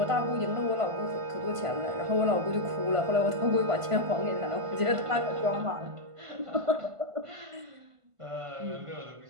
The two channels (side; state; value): left; late; 1.5 ms